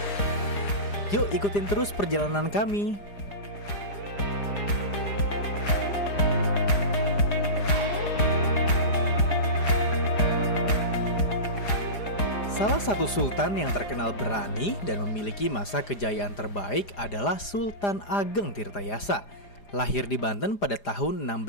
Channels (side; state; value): right; late; 4.9 ms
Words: Yuk ikutin terus perjalanan kami. Salah satu sultan yang terkenal berani dan memiliki masa kejayaan terbaik adalah Sultan Ageng Tirtayasa. Lahir di Banten pada tahun